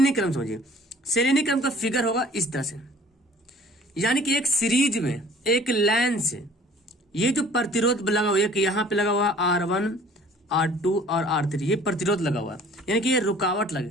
क्रम समझिए। श्रेणी क्रम का फिगर होगा इस तरह से, यानी कि एक सीरीज में एक लाइन से ये जो प्रतिरोध लगा हुआ है कि यहाँ पे लगा हुआ R1 R2 और R3, ये प्रतिरोध लगा हुआ है यानी कि ये रुकावट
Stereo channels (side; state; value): both; normal; correlation 0.51